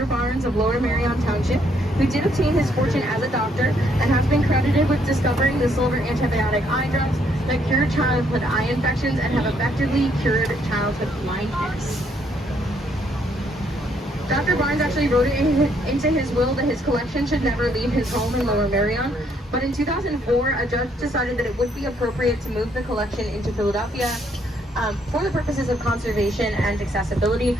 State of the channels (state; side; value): normal; both; correlation 0.70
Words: Barnes of Lower Merion Township, who did obtain his fortune as a doctor and has been credited with discovering the silver antibiotic eye drops that cure childhood eye infections and have effectively cured childhood blindness. Dr. Barnes actually wrote it into his will that his collection should never leave his home in Lower Merion, but in 2004, a judge decided that it would be appropriate to move the collection into Philadelphia for the purposes of conservation and accessibility,